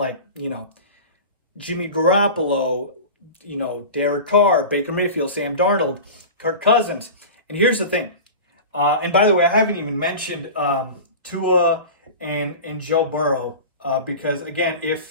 Jimmy Garoppolo, Derek Carr, Baker Mayfield, Sam Darnold, Kirk Cousins. And here's the thing. And by the way, I haven't even mentioned Tua and Joe Burrow, because, again,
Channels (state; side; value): inverted; both; correlation -0.32